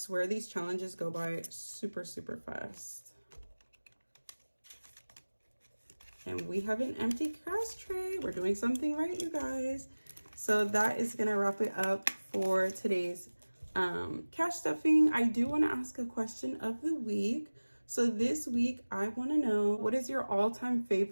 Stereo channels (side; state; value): both; inverted; correlation -1.00